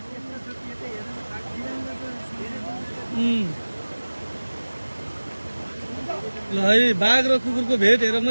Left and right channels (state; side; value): inverted; both; correlation -1.00